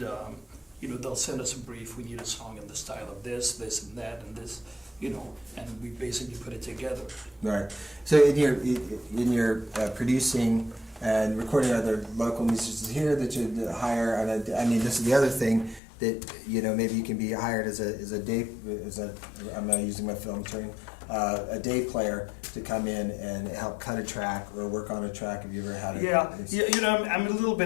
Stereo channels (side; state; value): right; drops out; at 15.8 s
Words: you know, they'll send us a brief, we need a song in the style of this, and that, and this, you know, and we basically put it together. Right. So in your producing and recording other local musicians here that you hire, and I mean, this is the other thing that, you know, maybe you can be hired as I'm not using my film term, a day player to come in and help cut a track or work on a track. Have you ever had it? Yeah, you know, I'm a little